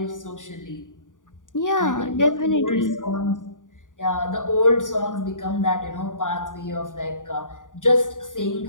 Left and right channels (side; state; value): right; late; 0.88 ms